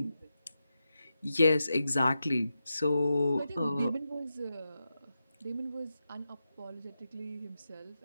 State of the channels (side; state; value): both; inverted; correlation -0.89